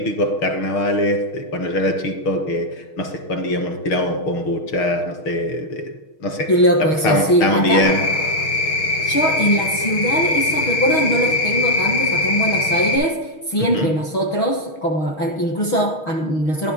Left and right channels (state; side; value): late; right; 6.4 ms